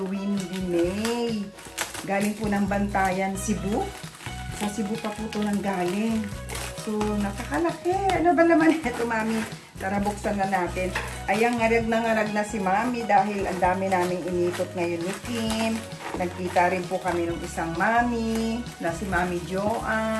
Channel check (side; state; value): both; identical; correlation 1.00